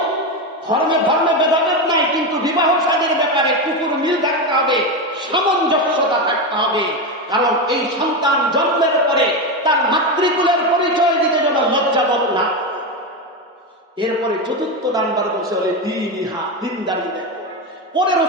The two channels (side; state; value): both; normal; correlation 0.14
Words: ধর্মে ভেদাভেদ নাই, কিন্তু বিবাহ শাদীর ব্যাপারে কুকুর মিল থাকতে হবে, সামঞ্জস্যতা থাকতে হবে। কারণ এই সন্তান জন্মের পরে এরপরে চতুর্থ নাম্বার বলছে বলে দিনদারি দেখো। পরে